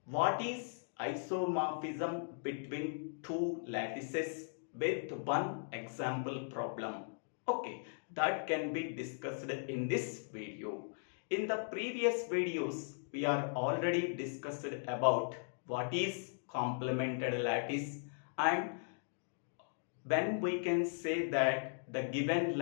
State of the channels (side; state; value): right; silent; digital silence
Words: what is isomorphism between two lattices with one example problem. Okay, that can be discussed in this video. In the previous videos, we are already discussed about what is complemented lattice and when we can say that the given